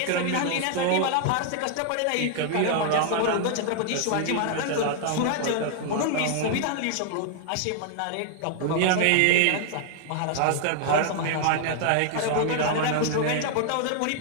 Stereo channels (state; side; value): different; both; correlation 0.00